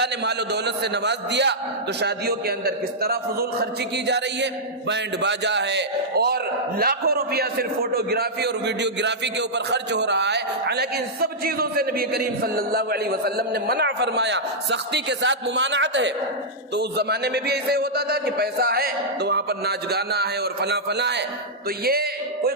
نے مال و دولت سے نواز دیا تو شادیوں کے اندر کس طرح فضول خرچی کی جا رہی ہے، بینڈ باجا ہے اور لاکھوں روپیہ صرف فوٹوگرافی اور ویڈیوگرافی کے اوپر خرچ ہو رہا ہے۔ حالانکہ ان سب چیزوں سے نبی کریم صلی اللہ علیہ وسلم نے منع فرمایا، سختی کے ساتھ ممانعت ہے۔ تو اس زمانے میں بھی ایسے ہوتا تھا کہ پیسہ ہے تو وہاں پر ناچ گانا ہے اور فلاں فلاں ہے۔ تو یہ کوئی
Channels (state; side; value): normal; both; correlation -0.09